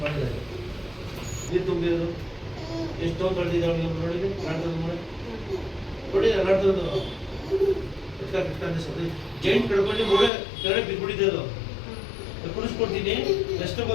ಮಾಡಿದ್ದಾರೆ. ನೀರು ತುಂಬಿರೋದು ಎಷ್ಟು ತೊಳೆದಿದ್ದಾವೆ ನೋಡಿ ನಾಟದ ಮಾಡಿ ನೋಡಿ ನಾಟದ ಜೈಂಟ್ ಕಡ್ಕೊಂಡು ಮೂಳೆ ಕೆಳಗೆ ಬಿದ್ದುಬಿಟ್ಟಿದೆ. ಅದು ಕುಡಿಸ್ಕೊಡ್ತೀನಿ ಎಷ್ಟು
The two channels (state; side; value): drops out; right; at 10.3 s